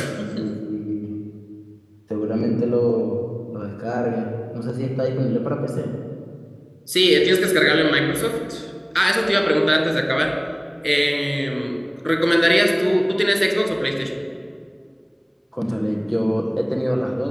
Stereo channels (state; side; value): identical; both; correlation 1.00